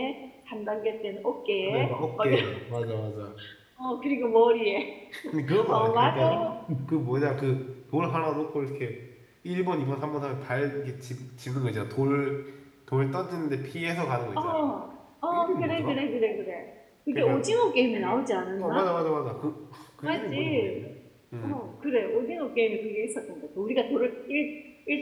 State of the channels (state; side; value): identical; both; correlation 1.00